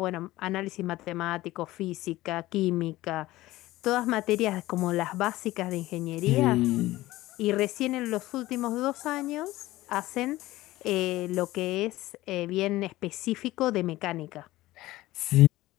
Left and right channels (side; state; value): right; quieter; 17.3 dB